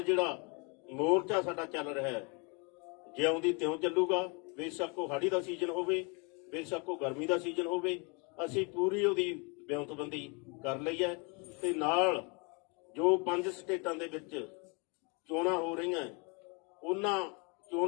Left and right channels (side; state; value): right; quieter; 32.5 dB